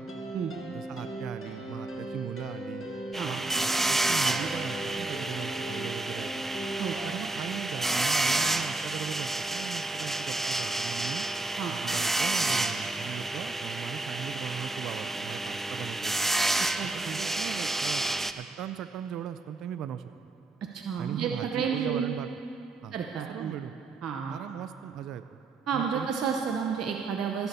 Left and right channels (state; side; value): quieter; left; 3.3 dB